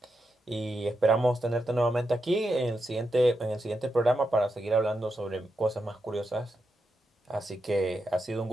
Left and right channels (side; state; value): both; normal; correlation 0.86